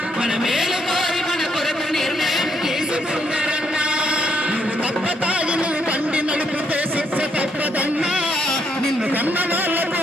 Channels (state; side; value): normal; both; correlation 0.73